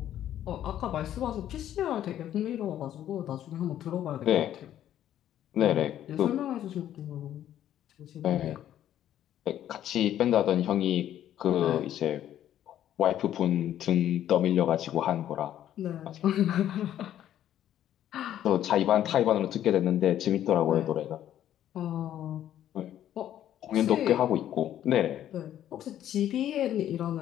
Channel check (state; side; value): quieter; right; 11.4 dB